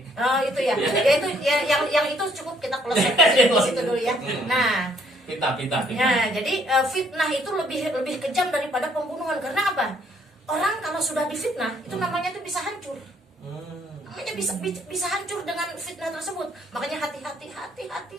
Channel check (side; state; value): both; normal; correlation 0.65